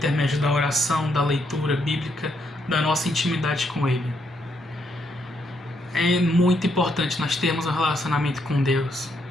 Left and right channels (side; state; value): both; normal; correlation 0.76